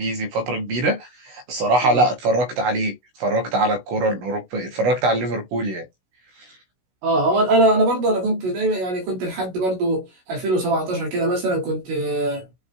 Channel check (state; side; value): late; left; 16 ms